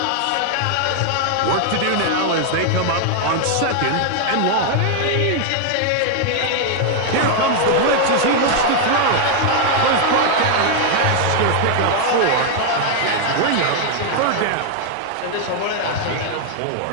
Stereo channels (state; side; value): different; both; correlation 0.00